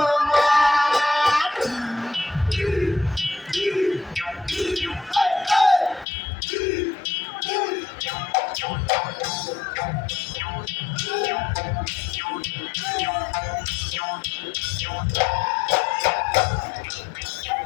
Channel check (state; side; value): drops out; right; at 6.1 s